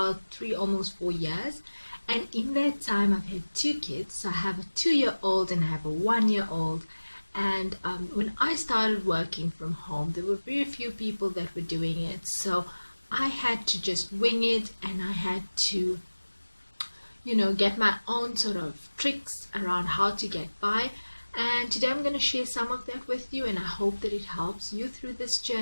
3, almost 4 years. And in that time, I've had two kids. So I have a 2-year-old and I have a 1-year-old. And when I started working from home, there were very few people that were doing it. So I had to just wing it, and I had to, get my own sort of tricks around how to get by. And today I'm going to share some of that with you, and I hope that it helps you through this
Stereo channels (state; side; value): inverted; both; correlation -1.00